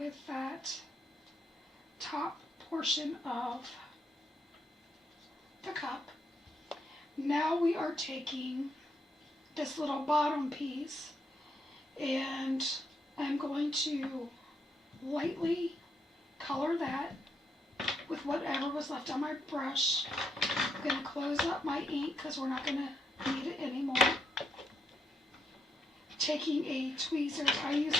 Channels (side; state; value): both; normal; correlation 0.79